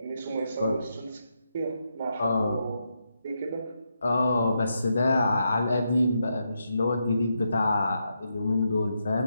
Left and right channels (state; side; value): inverted; both; correlation -0.83